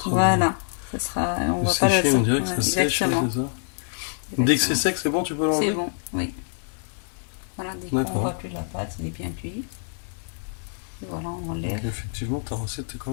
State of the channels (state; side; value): silent; right; digital silence